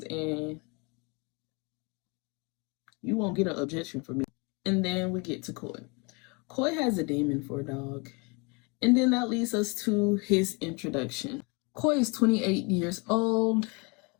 and you won't get an objection from me. And then we get to Coy. Coy has a demon for a dog. And then that leads us to his introduction. Coy is 28 years old,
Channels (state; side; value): quieter; right; 30.2 dB